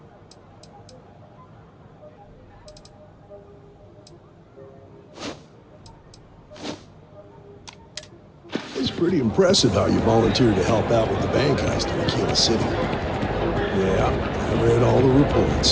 It's pretty impressive how you volunteered to help out with the bank heist in Aquila City. Yeah, I read all the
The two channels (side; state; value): both; identical; correlation 1.00